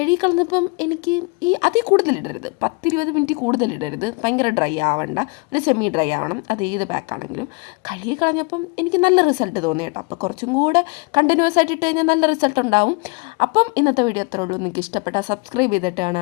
എനിക്ക് അതിൽ കൂടുതലിടരുത്, 10-20 മിനിറ്റ് കൂടുതലിടരുത്, ഭയങ്കര ഡ്രൈ ആവണ്ട, ഒരു സെമി ഡ്രൈ ആവണം. അത് ഏത് ബാക്കാണെങ്കിലും. കഴുകിക്കളഞ്ഞപ്പം എനിക്ക് നല്ല റിസൾട്ട് തോന്നി കേട്ടോ. അപ്പോൾ കുറച്ചും കൂടെ കണ്ടിന്യൂസ് ആയിട്ട് ഇട്ട് കഴിഞ്ഞാൽ നല്ല റിസൾട്ട് ഉണ്ടാവും. അപ്പം ഇന്നത്തെ വീഡിയോ അത്രേ ഉള്ളൂ. നിങ്ങൾക്ക് ഇഷ്ടപ്പെട്ടാൽ സബ്സ്ക്രൈബ്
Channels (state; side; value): quieter; right; 30.7 dB